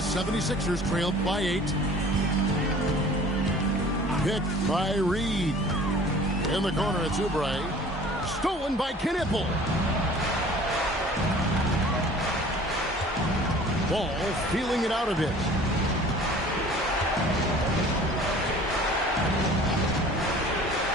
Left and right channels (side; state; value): both; normal; correlation 0.47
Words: trailed by 8. Picked by Reed. In the corner, it's Oubre. Stolen by Knipple. Ball feeling it out a bit.